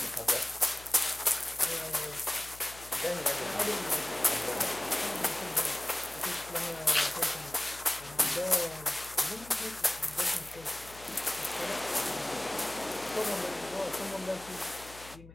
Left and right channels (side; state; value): left; noise; hum, 19 dB below the sound